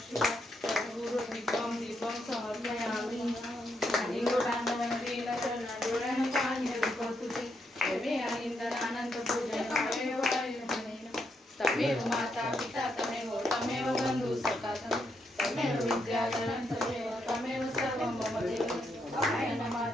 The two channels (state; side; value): normal; both; correlation 0.79